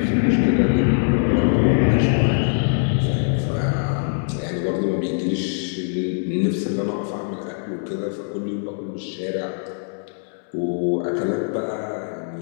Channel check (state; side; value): silent; right; 64 dB below the other